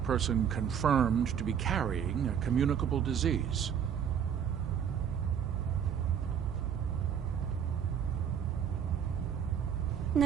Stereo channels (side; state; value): left; quieter; 8.2 dB